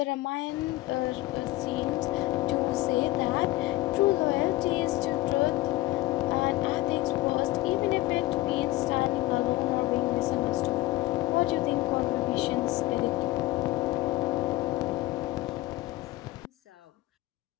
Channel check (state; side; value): quieter; right; 18.8 dB